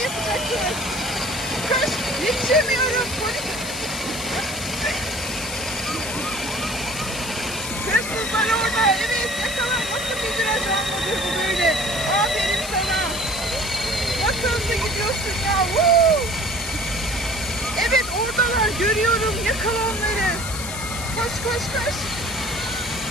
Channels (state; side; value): noise; left; hiss, 8 dB below the sound